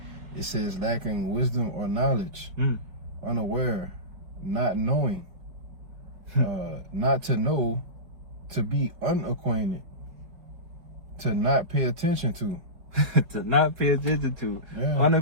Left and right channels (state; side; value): late; left; 4.9 ms